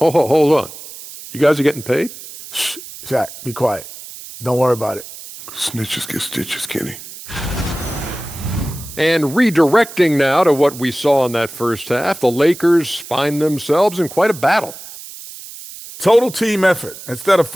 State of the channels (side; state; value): right; noise; hiss, 14 dB below the sound